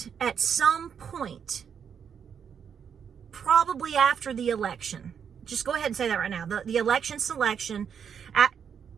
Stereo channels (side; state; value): left; quieter; 7.4 dB